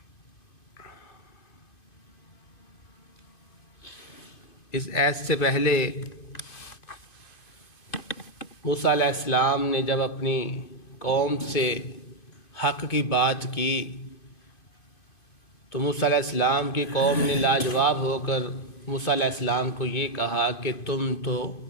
اس آیت سے پہلے موسیٰ علیہ السلام نے جب اپنی قوم سے حق کی بات کی تو موسیٰ علیہ السلام کی قوم نے لاجواب ہو کر موسیٰ علیہ السلام کو یہ کہا کہ تم تو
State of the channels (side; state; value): right; late; 2.5 ms